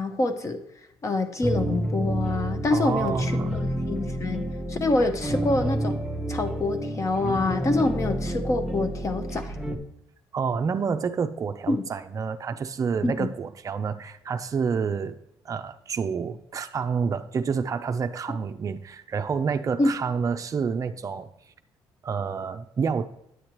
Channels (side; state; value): both; normal; correlation 0.78